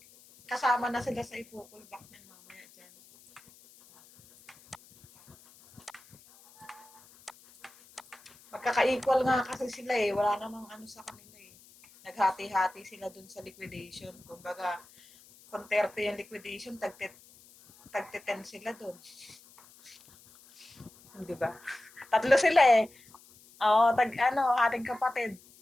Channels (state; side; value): noise; left; hiss, 25 dB below the sound